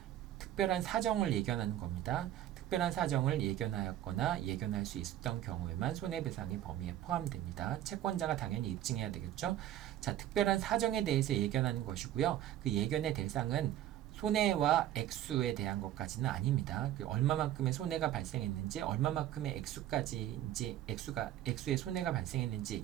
특별한 사정을 예견하는 겁니다. 특별한 사정을 예견하였거나 예견할 수 있었던 경우에만 손해배상의 범위에 포함됩니다. 채권자가 당연히 입증해야 되겠죠. 자, 특별한 사정에 대해서 예견하는 것이고요. 그 예견의 대상은 손해와 액수에 대한 것까지는 아닙니다. 얼마만큼의 손해가 발생했는지, 얼마만큼의 액수의 손해가 발생했는지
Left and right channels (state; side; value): quieter; left; 12.3 dB